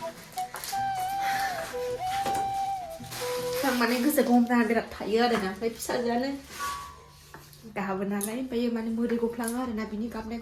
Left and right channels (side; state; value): both; identical; correlation 1.00